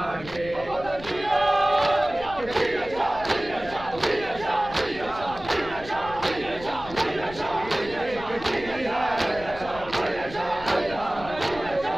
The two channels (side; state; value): left; noise; rumble, 15 dB below the sound